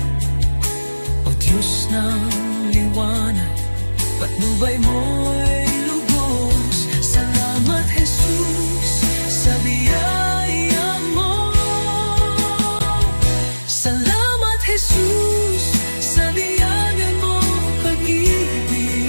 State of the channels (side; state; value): both; inverted; correlation -1.00